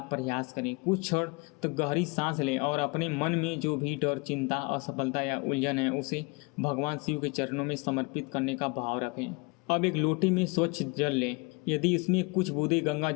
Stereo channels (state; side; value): quieter; right; 29.1 dB